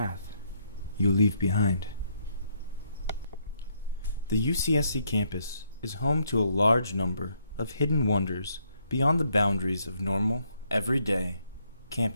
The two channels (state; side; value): inverted; both; correlation -0.73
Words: you leave behind. The UCSC campus is home to a large number of hidden wonders beyond the boundaries of normal, everyday